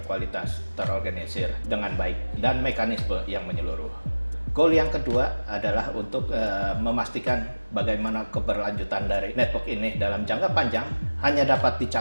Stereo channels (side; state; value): both; inverted; correlation -1.00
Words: terorganisir dengan baik dan mekanisme yang menyeluruh. Goal yang kedua adalah untuk memastikan bagaimana keberlanjutan dari network ini dalam jangka panjang hanya dapat